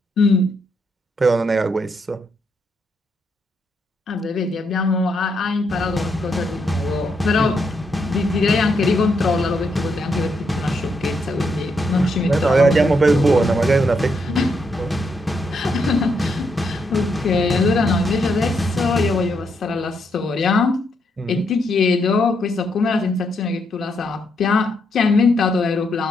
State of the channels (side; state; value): both; normal; correlation 0.78